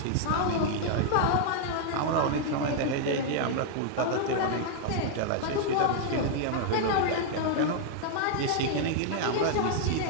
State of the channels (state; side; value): different; both; correlation 0.00